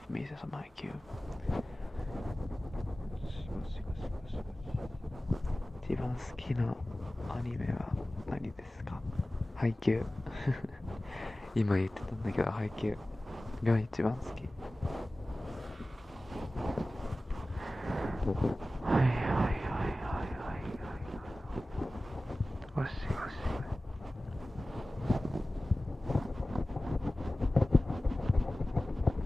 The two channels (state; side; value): normal; both; correlation 0.97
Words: me some Haikyuu. 一番好きなアニメは何ですか？ハイキュー。今言ってたんだけど、ハイキューが一番好き。はいはいはいはいはいはい。ゴシゴシ。